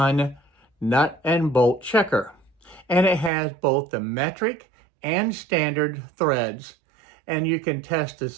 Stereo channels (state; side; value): drops out; left; at 3.3 s